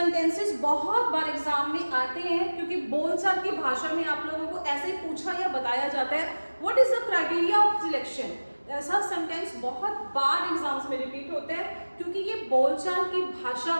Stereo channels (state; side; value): inverted; both; correlation -1.00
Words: बहुत बार exam में आते हैं क्योंकि बोलचाल की भाषा में आप लोगों को ऐसे पूछा या बताया जाता है what is the criteria of selection. ऐसा सेंटेंस बहुत बार एग्जाम्स में रिपीट होता है क्योंकि ये बोलचाल की भाषा